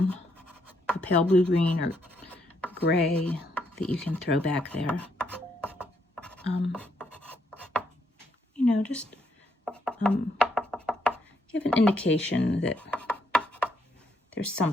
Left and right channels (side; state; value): both; normal; correlation 0.74